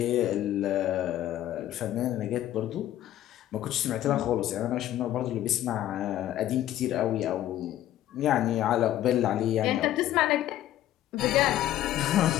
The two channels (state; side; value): quieter; right; 13.0 dB